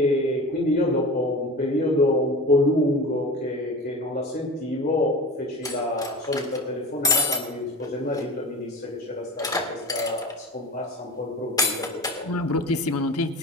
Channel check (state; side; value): normal; both; correlation 0.33